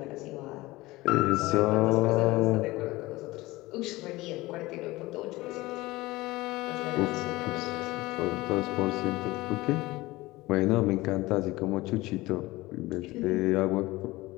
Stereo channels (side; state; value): right; quieter; 19.8 dB